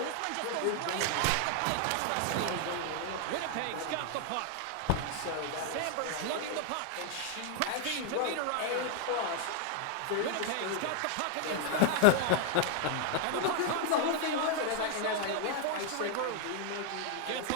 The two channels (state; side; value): different; both; correlation 0.00